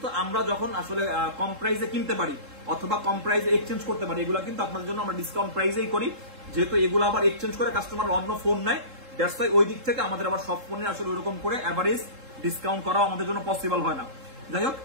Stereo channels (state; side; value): late; left; 3.7 ms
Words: আমরা যখন আসলে কম প্রাইসে কিনতে পারি অথবা কম প্রাইসে এক্সচেঞ্জ করতে পারি, এগুলো কিন্তু আপনার জন্য আমরা ডিসকাউন্ট প্রাইসেই করি, যেহেতু এগুলো আবার এক্সচেঞ্জ করে কাস্টমার অন্য ফোন নেয়। দ্যাটস ওয়াই ওই দিক থেকে আমাদের আবার সব ফোনে আসলে ওইরকম করে এভারেজ ডিসকাউন্ট করা আমাদের জন্য পসিবল হয় না। যাই হোক,